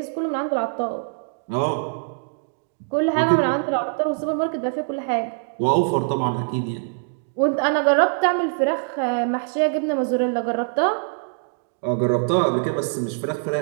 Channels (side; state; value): left; silent; digital silence